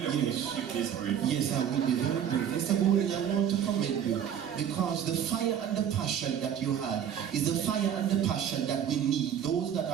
that we should keep this brief. Yes, I will be very brief. Mr. Oldie, I want to commend you because the fire and the passion that you had is the fire and the passion that we need. Those that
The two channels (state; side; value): quieter; left; 9.1 dB